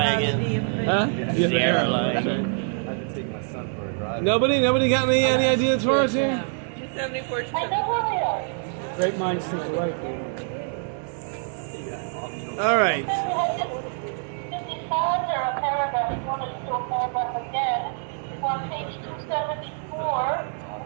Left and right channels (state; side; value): silent; left; 55 dB below the other